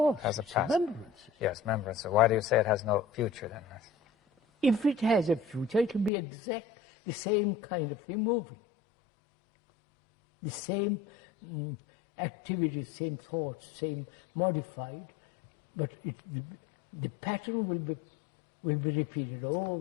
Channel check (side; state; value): right; drops out; at 6.1 s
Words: Has a it's past. Remembrances. Yes, remembrance. So why do you say it has no future then? If it has a future, it will be exact the same kind of thing moving. The same activities, same thoughts, same modified, but the pattern will be repeated